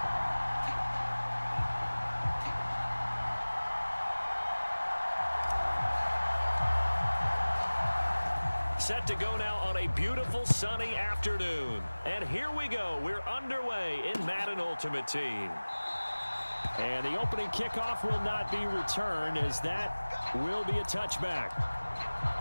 Set to go now on a beautiful sunny afternoon. And here we go. We're underway in Madden Ultimate Team. And the opening kickoff will not be returned, as that will be a touchback.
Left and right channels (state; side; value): inverted; both; correlation -1.00